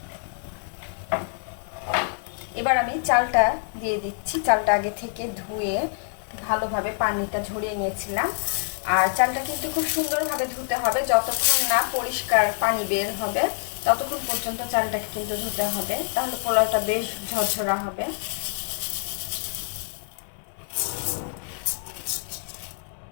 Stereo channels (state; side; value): silent; right; digital silence